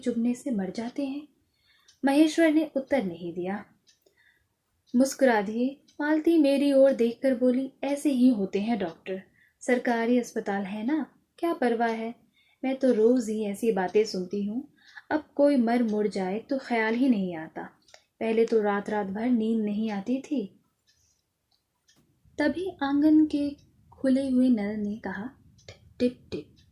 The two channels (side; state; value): both; identical; correlation 1.00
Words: से मर जाते हैं। महेश्वर ने उत्तर नहीं दिया, मुस्कुरा दिए। मालती मेरी ओर देखकर बोली, ऐसे ही होते हैं डॉक्टर, सरकारी अस्पताल है ना, क्या परवाह है। मैं तो रोज ही ऐसी बातें सुनती हूँ, अब कोई मर मुड़ जाए तो ख्याल ही नहीं आता। पहले तो रात रात भर नींद नहीं आती थी। तभी आंगन के खुले हुए नल ने कहा, टिप टिप।